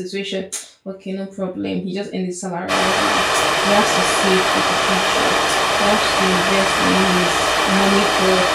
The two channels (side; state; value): both; identical; correlation 1.00